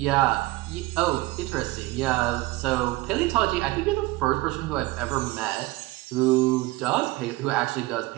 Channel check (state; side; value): quieter; left; 19.9 dB